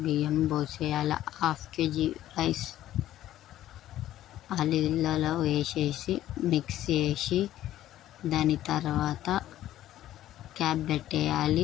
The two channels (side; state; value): right; quieter; 13.3 dB